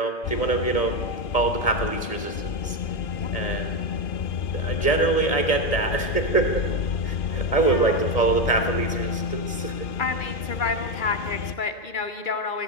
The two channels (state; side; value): late; right; 1.7 ms